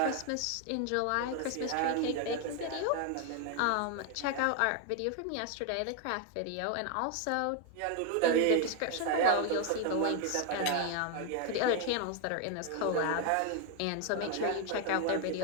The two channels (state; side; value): different; both; correlation 0.00